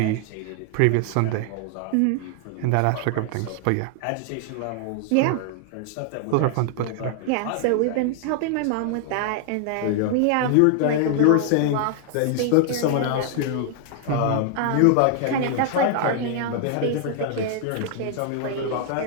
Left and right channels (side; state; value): both; different; correlation 0.00